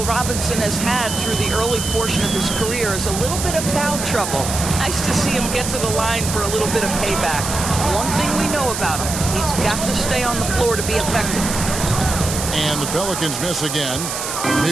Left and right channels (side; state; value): right; noise; hiss, 5 dB below the sound